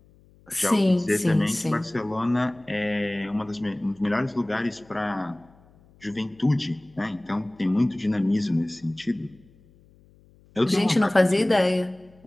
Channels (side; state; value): left; noise; hum, 29 dB below the sound